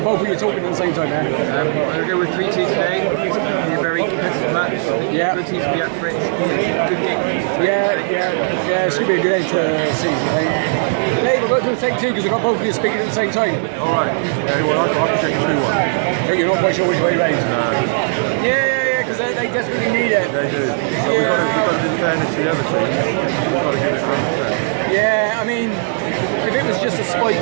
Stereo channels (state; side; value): silent; left; digital silence